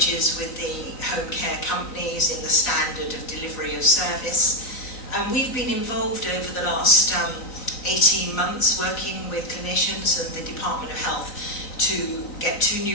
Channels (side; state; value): right; late; 3.9 ms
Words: with the home care companies in the standard of delivery of service. And we've been involved over the last 18 months working with clinicians and the Department of Health to get 2